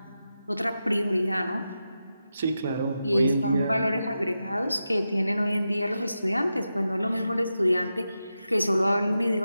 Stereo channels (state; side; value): inverted; both; correlation -0.90